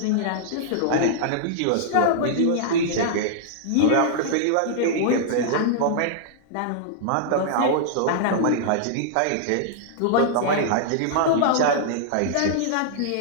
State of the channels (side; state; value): both; different; correlation -0.01